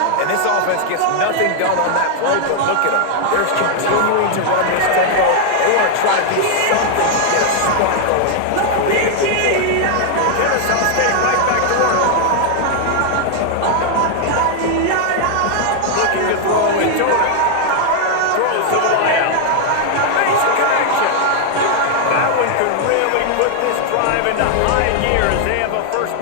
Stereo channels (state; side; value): different; both; correlation 0.00